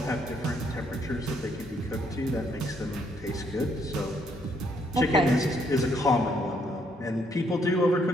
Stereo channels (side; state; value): both; normal; correlation 0.71